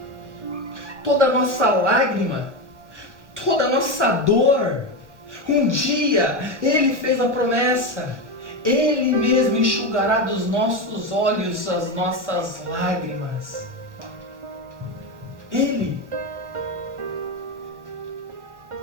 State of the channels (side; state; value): left; late; 1.0 ms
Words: toda a nossa lágrima, toda a nossa dor, um dia Ele fez a promessa, Ele mesmo enxugará dos nossos olhos as nossas lágrimas.